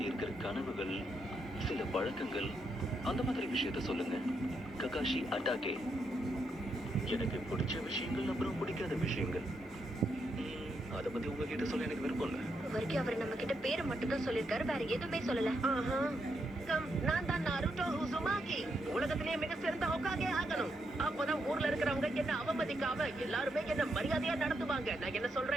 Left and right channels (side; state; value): both; normal; correlation 0.80